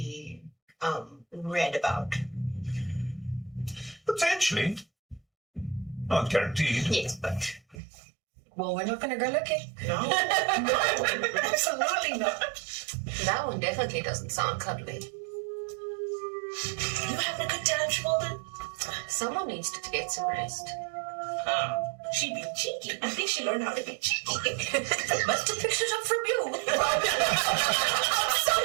read about? Potentially. Not guaranteed. Yes, but... Well, we're not going to go looking. No, absolutely not. That one definitely doesn't sound cuddly. You having a good time, Shmolden? Someone needs to get some rest. She be cheeky. I think she learned how to be cheeky. Must have picked it up from you. I'm so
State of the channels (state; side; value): drops out; left; at 7.8 s